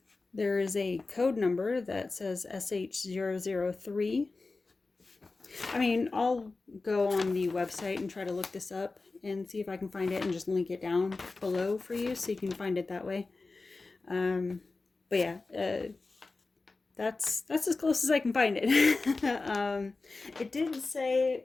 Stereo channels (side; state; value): right; quieter; 3.7 dB